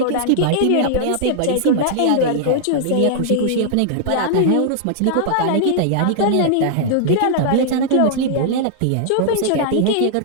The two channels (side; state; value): both; different; correlation -0.01